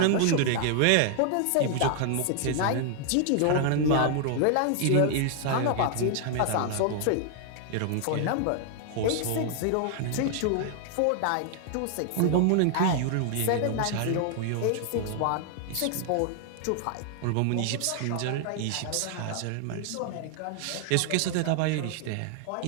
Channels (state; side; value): different; both; correlation 0.00